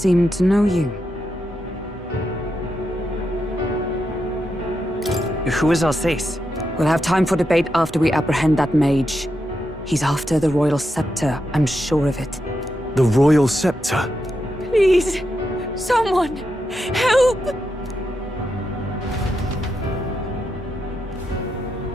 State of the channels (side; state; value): both; normal; correlation 0.85